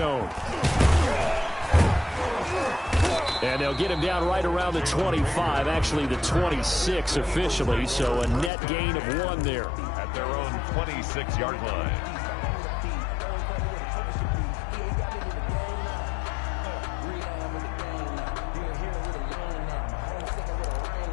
And they'll get him down right around the 25, actually the 26 officially, so a net gain of 1 there. At their own 26-yard line.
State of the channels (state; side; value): drops out; right; at 8.5 s